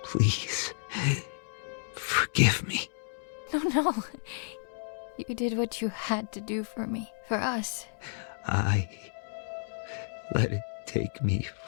Please. Forgive me. No. You did what you had to do for me. For us. I let it take me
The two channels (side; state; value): right; silent; digital silence